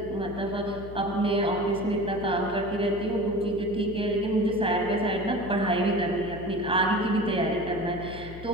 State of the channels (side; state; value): left; noise; hum, 13 dB below the sound